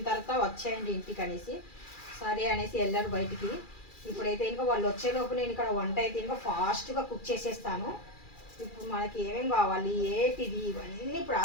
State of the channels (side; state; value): right; late; 2.4 ms